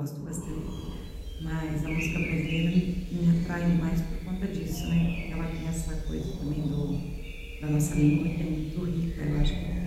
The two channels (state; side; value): identical; both; correlation 1.00